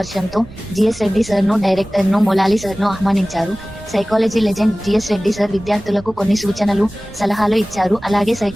జిఎస్ రెడ్డి సార్ ను, డైరెక్టర్ ను, మొలాలి సార్ ను ఆహ్వానించారు. Psychology legend GS Reddy sir విద్యార్థులకు కొన్ని సూచనలు, సలహాలు ఇచ్చారు. అలాగే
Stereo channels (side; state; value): right; noise; rumble, 18 dB below the sound